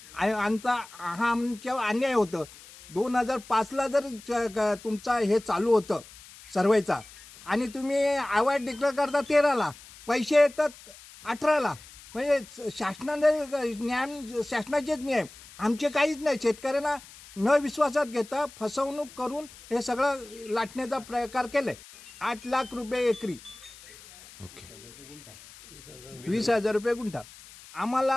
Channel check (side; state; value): left; noise; hiss, 20 dB below the sound